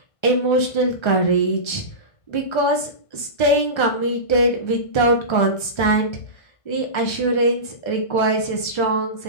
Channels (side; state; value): right; late; 1.3 ms